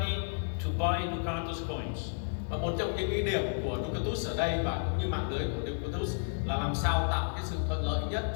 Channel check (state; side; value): silent; right; 56 dB below the other